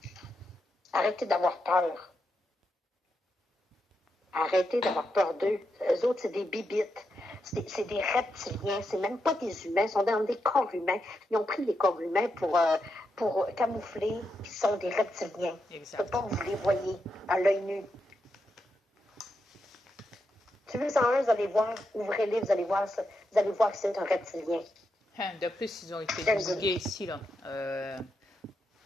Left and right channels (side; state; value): both; normal; correlation 0.84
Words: Arrêtez d'avoir peur. Arrêtez d'avoir peur d'eux. Eux autres, c'est des bibites. C'est des reptiliens. C'est même pas des humains. Ils sont dans des corps humains. Ils ont pris les corps humains pour camoufler qu'ils sont des reptiliens. Exact. Pas vous les voyez à l'œil nu. Si vous en un, vous allez voir, ouvrez-les, vous allez voir que c'est un reptilien. De plus, ils ont été divulgués ici, là.